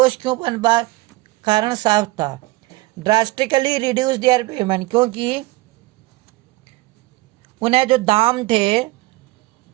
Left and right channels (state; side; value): quieter; left; 20.4 dB